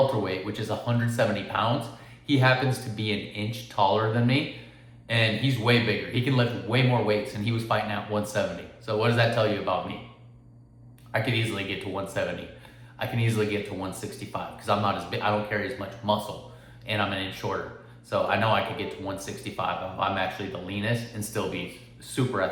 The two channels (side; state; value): both; identical; correlation 1.00